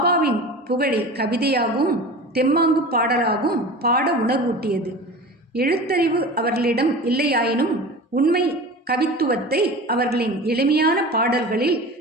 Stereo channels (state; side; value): normal; both; correlation 0.35